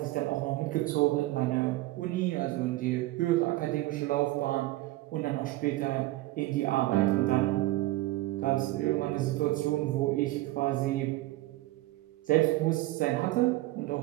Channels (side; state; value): left; quieter; 17.9 dB